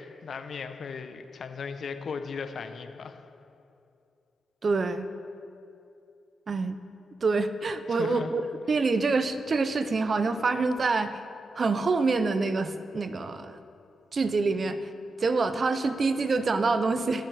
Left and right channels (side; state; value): left; quieter; 3.1 dB